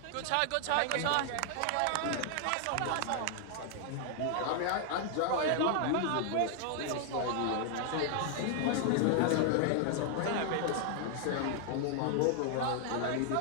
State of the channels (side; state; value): both; different; correlation 0.00